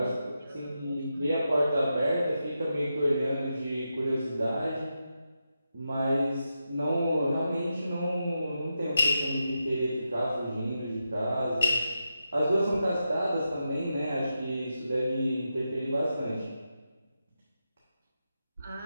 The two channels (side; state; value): both; inverted; correlation -0.88